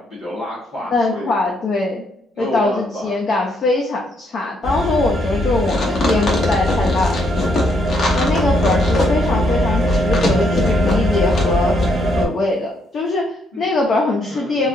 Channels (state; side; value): normal; both; correlation 0.73